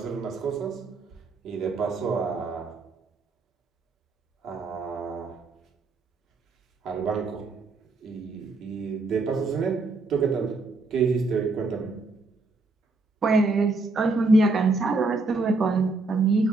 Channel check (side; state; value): left; quieter; 3.5 dB